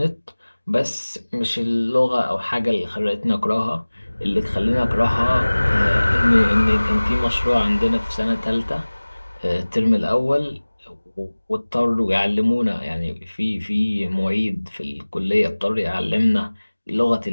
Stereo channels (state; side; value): inverted; both; correlation -1.00